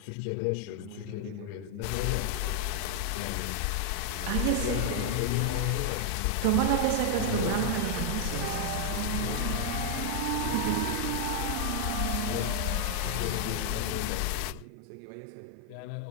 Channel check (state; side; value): different; both; correlation 0.00